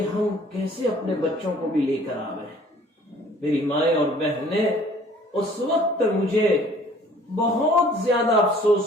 ہم کیسے اپنے بچوں کو بھی لے کر آ گئے۔ میری مائیں اور بہنیں، اس وقت مجھے بہت زیادہ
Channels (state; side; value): normal; both; correlation 0.54